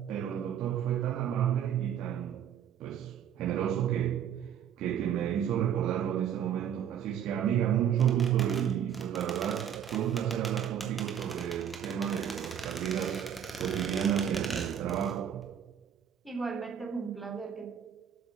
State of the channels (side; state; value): left; quieter; 9.1 dB